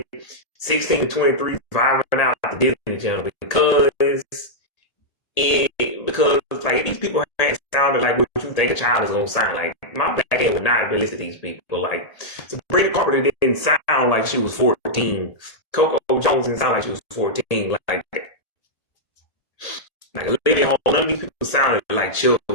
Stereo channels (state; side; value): late; right; 1.8 ms